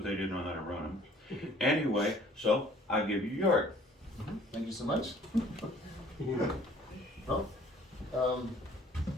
they didn't know how to run them. Anyway, so I'll give you Jörg. Thank you so much. Well,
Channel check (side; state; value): both; normal; correlation 0.55